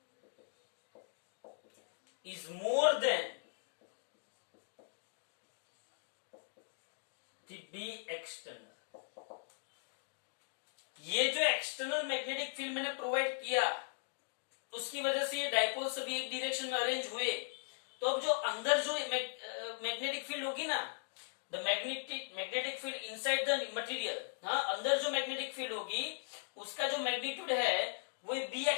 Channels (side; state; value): right; silent; digital silence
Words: is more than the B external। ये जो एक्सटर्नल मैग्नेटिक फील्ड मैंने प्रोवाइड किया, उसकी वजह से ये डाइपोल सभी एक डायरेक्शन में अरेंज हुए। तो अब जो अंदर जो मैग्नेटिक फील्ड होगी ना, the magnetic field inside the material, हाँ, अंदर जो मैग्नेटिक फील्ड होगी उसका जो मैग्नीट्यूड है वो बी